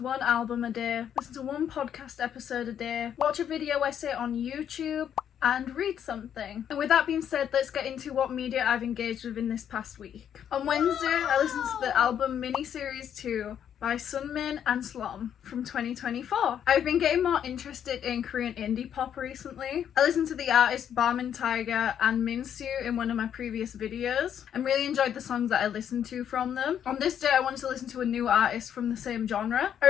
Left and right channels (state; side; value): quieter; right; 9.2 dB